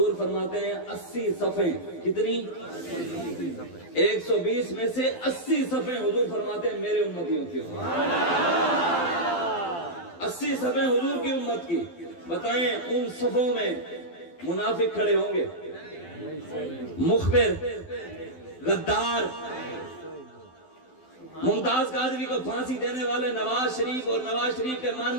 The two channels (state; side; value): late; right; 12 ms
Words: فرماتے ہیں 80 صفیں، کتنی؟ 120 میں سے 80 صفیں حضور فرماتے ہیں میرے امتیوں کی ہوں۔ 80 صفیں حضور کی امت کی۔ بتائیں ان صفوں میں منافق کھڑے ہوں گے، مخبر، غدار، ممتاز قادری کو پھانسی دینے والے، نواز شریف اور نواز شریف کے